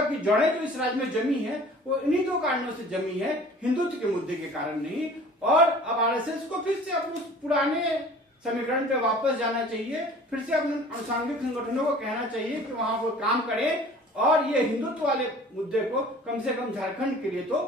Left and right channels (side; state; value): both; normal; correlation 0.47